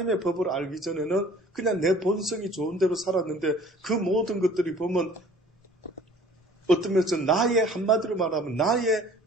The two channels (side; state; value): both; normal; correlation 0.51